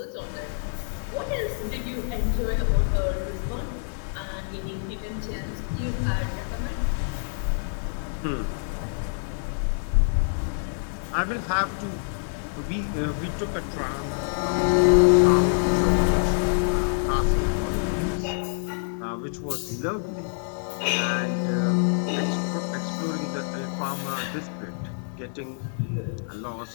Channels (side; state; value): right; silent; digital silence